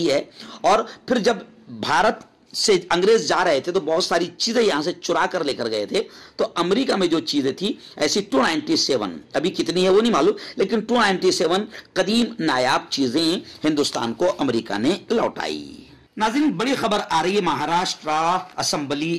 है। और फिर जब भारत से अंग्रेज जा रहे थे तो बहुत सारी चीजें यहां से चुरा कर लेकर गए थे। तो अमेरिका में जो चीजें थी ऐसी 297, अभी कितनी है वो नहीं मालूम, लेकिन 297 कदीम नायाब चीजें हिंदुस्तान को अमेरिका ने लौटाई। नाज़रीन, बड़ी खबर आ रही है महाराष्ट्र असेंबली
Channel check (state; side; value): identical; both; correlation 1.00